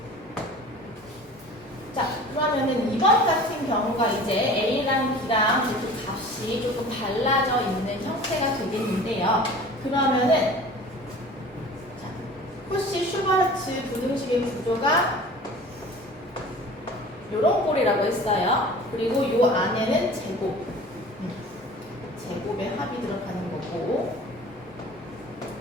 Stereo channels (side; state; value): both; normal; correlation 0.42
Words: 자, 그러면은 이번 같은 경우가 이제 A랑 B랑 이렇게 값이 조금 달라져 있는 형태가 되겠는데요. 그러면은 자, 코시-슈바르츠 부등식의 구조가 요런 꼴이라고 했어요. 그리고 요 안에는 제곱의 합이 들어가는 거고